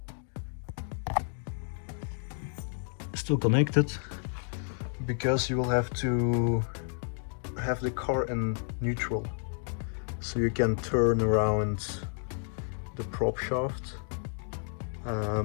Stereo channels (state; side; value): silent; right; 57 dB below the other